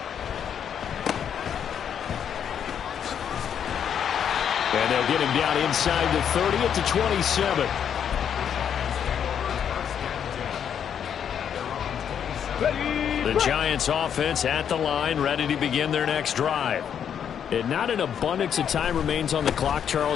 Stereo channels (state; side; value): quieter; right; 8.4 dB